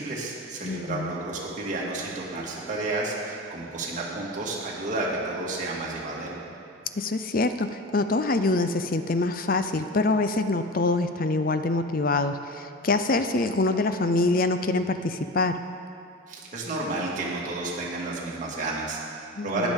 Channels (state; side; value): normal; both; correlation 0.30